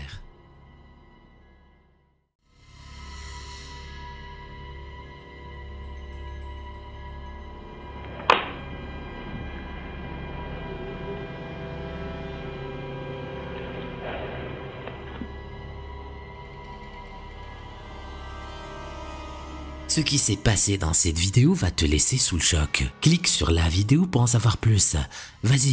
Ce qui s'est passé dans cette vidéo va te laisser sous le choc. Clique sur la vidéo pour en savoir plus.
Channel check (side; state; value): both; identical; correlation 1.00